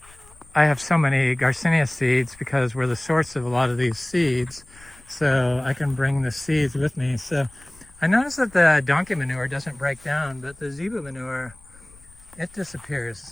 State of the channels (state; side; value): noise; left; rumble, 25 dB below the sound